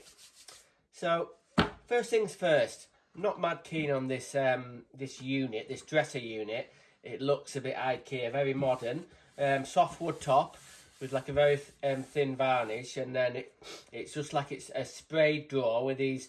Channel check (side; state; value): both; identical; correlation 1.00